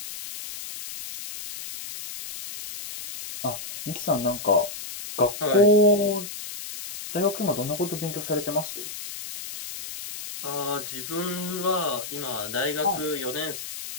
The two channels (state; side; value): noise; left; hiss, 9 dB below the sound